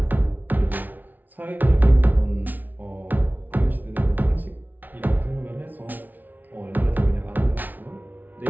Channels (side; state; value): left; late; 0.082 ms